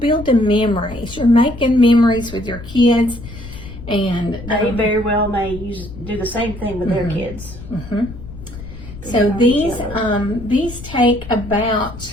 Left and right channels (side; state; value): left; noise; rumble, 13 dB below the sound